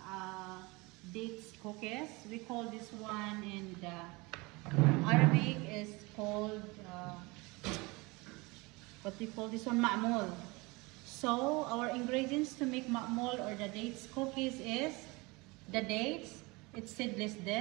dates cookies. We call this one in the Arabic is called what we call this one, ma'mul. So our ingredients to make ma'mul or the dates cookies is the dates. It's seedless.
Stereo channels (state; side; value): quieter; left; 25.0 dB